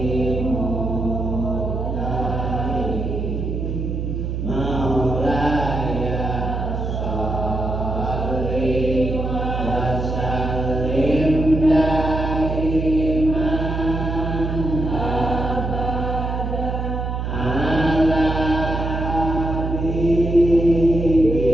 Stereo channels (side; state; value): right; noise; hum, 2 dB below the sound